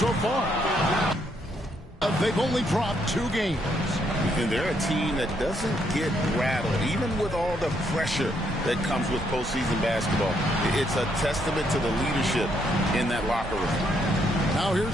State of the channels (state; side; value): normal; both; correlation 0.74